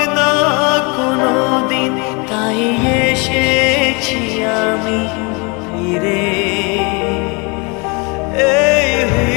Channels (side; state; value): right; quieter; 30.2 dB